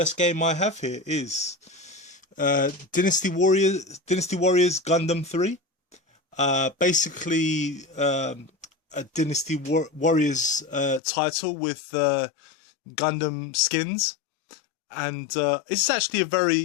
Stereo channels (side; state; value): right; drops out; at 11.0 s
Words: game I have here is Dynasty Warriors Gundam 3. Basically a Dynasty Warriors title with Gundam skins, and it's actually a